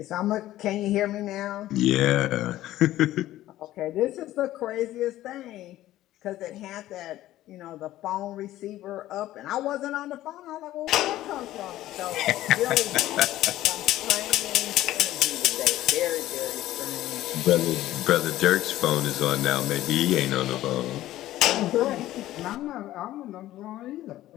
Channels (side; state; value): right; quieter; 14.7 dB